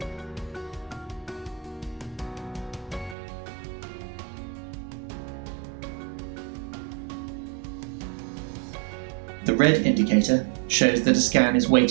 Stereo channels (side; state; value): left; drops out; at 3.2 s